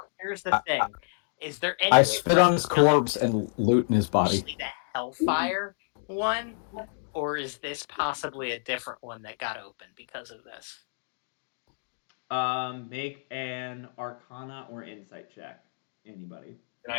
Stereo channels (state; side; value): silent; right; digital silence